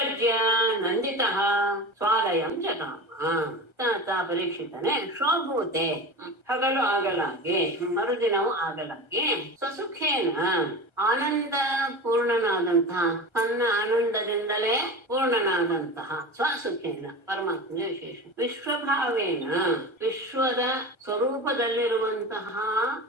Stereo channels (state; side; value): late; right; 1.3 ms